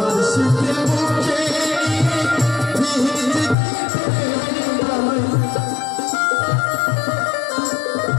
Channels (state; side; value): drops out; right; at 3.6 s